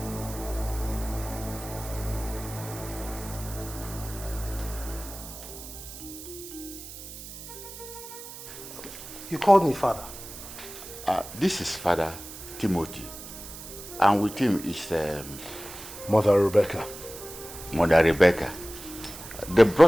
You called me father. This is Father Timothy, and with him is Mother Rebecca. Mother Rebecca. They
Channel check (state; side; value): noise; right; hiss, 13 dB below the sound